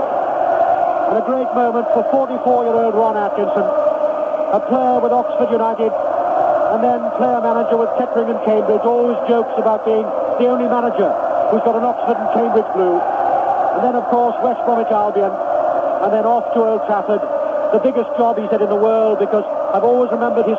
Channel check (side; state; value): both; identical; correlation 1.00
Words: And a great moment for 44-year-old Ron Atkinson, a player with Oxford United, and then player-manager with Kettering and Cambridge, always jokes about being the only manager who's got an Oxford and Cambridge blue. And then, of course, West Bromwich Albion, and then off to Old Trafford. The biggest job, he said, in the world, because I've always remembered